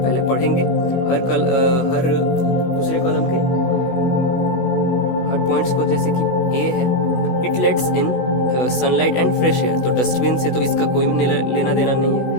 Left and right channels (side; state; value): right; late; 16 ms